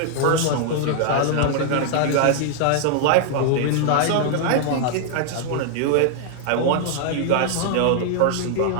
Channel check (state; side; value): different; both; correlation 0.00